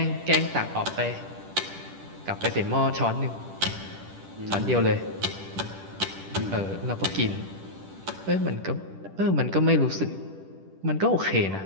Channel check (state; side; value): late; left; 10 ms